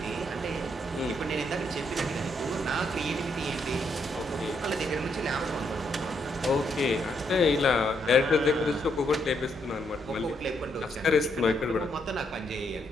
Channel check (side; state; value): both; normal; correlation 0.76